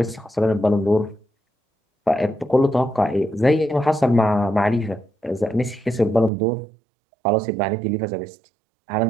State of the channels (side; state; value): left; drops out; at 6.3 s